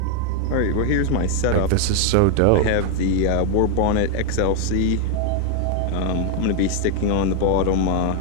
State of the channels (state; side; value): different; both; correlation 0.01